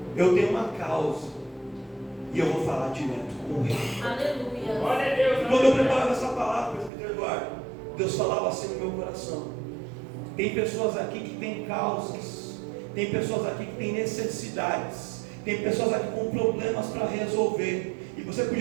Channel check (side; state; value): left; drops out; at 6.9 s